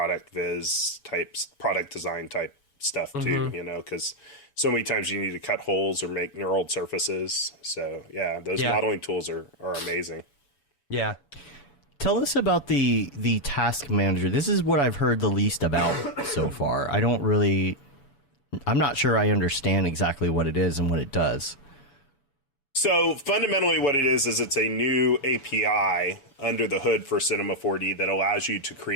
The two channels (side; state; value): right; late; 7.0 ms